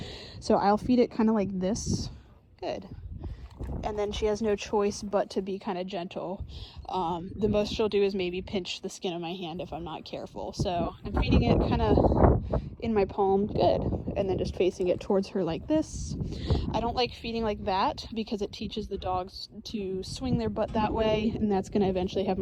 So I'll feed it kind of like this. Good. And then she has no choice but to be kind of gentle. The most she'll do is maybe pinch the skin of my hand if I'm not careful. So I'm feeding it kind of in my palm. Good. And then just facing it towards her like this. I don't like feeding like that because it teaches the dogs to swing their butt that way, and that's going to eventually have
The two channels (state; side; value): identical; both; correlation 1.00